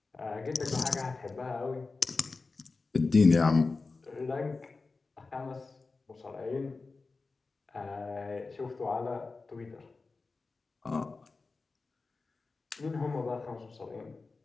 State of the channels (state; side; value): quieter; right; 3.9 dB